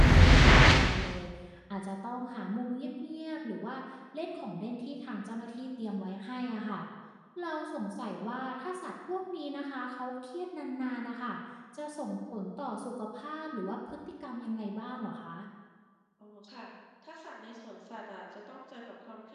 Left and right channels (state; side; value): identical; both; correlation 1.00